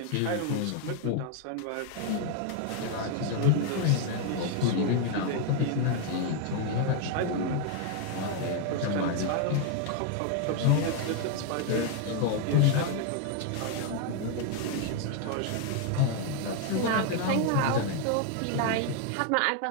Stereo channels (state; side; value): different; both; correlation 0.00